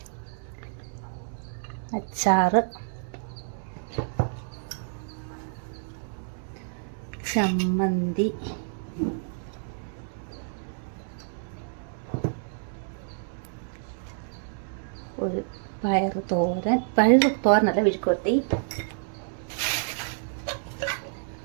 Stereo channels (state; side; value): silent; left; digital silence